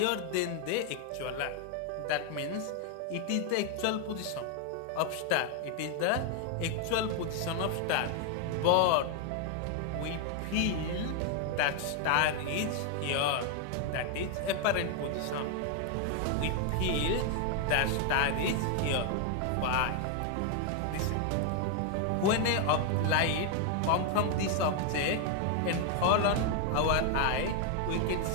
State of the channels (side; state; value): both; different; correlation 0.00